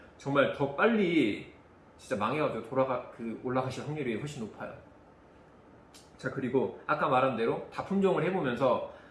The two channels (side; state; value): both; identical; correlation 1.00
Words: 정말 더 빨리 진짜 망해가지고 올라가실 확률이 훨씬 높아요. 자, 그리고 아까 말한 대로 다품종을 해보면서